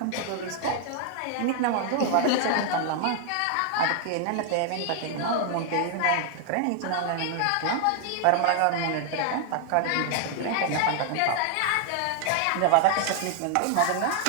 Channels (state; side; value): different; both; correlation 0.00